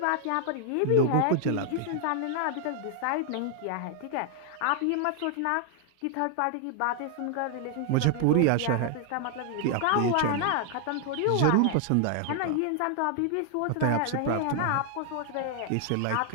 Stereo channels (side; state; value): both; different; correlation 0.00